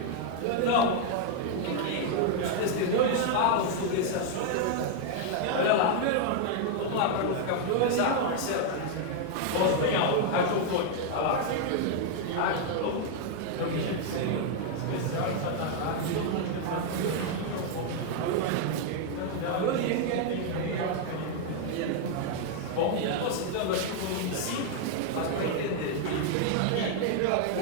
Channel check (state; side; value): different; both; correlation 0.00